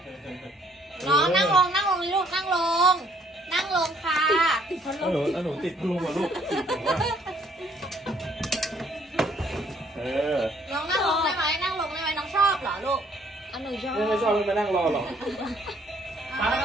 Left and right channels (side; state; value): both; normal; correlation 0.64